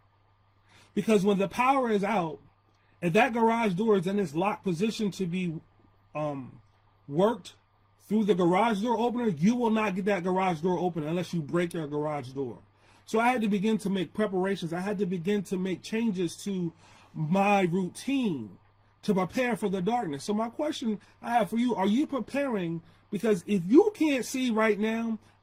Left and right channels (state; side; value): identical; both; correlation 1.00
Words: Because when the power is out, and that garage door is in its locked position to be worked through the garage door opener, you will not get that garage door open unless you break your garage door. So I had to begin to make preparations. I had to begin to make changes to my routine to prepare for the darkness. So my question I have for you, are you preparing? Because if you can't see right now